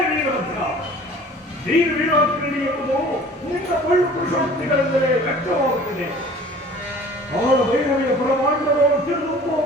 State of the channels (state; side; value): normal; both; correlation 0.47